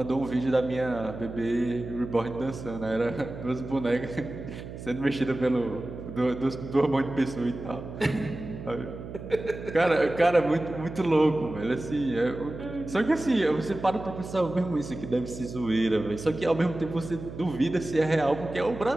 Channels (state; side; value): noise; right; hum, 11 dB below the sound